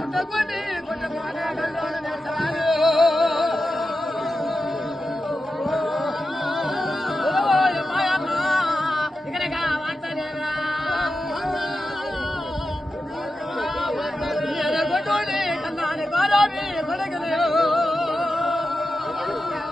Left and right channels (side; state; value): both; normal; correlation 0.91